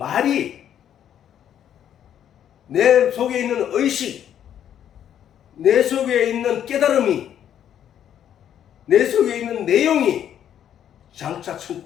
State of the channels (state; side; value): quieter; right; 9.9 dB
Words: 내 속에 있는 의식, 내 속에 있는 깨달음이, 내 속에 있는 내용이 장차